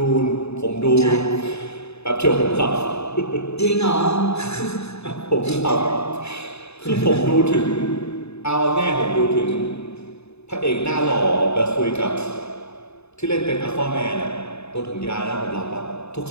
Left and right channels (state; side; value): late; right; 0.80 ms